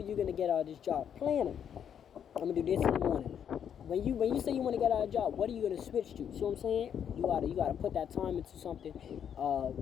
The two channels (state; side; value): quieter; right; 8.5 dB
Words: you going to get out of this job? Planning. I'm going to do this in the morning. When you say you want to get out of a job, what are you going to switch to? See what I'm saying? You gotta put that time into something